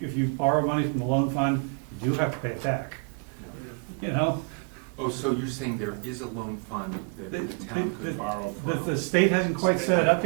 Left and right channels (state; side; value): quieter; left; 38.1 dB